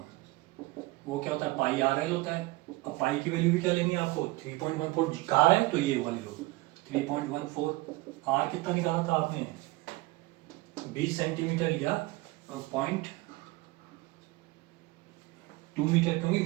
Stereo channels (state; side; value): quieter; left; 21.1 dB